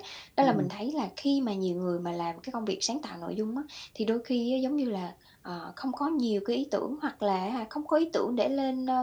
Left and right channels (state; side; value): identical; both; correlation 1.00